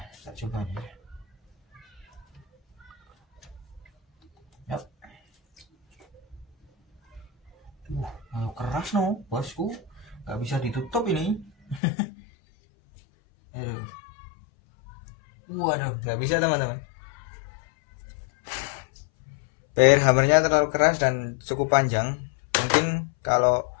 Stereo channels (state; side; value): drops out; right; at 11.8 s